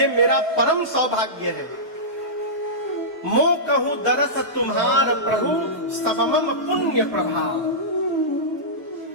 मेरा परम सौभाग्य है। मो कहूं दरस तुम्हार प्रभु, सबमम पुण्य प्रभाव।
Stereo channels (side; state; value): both; normal; correlation -0.16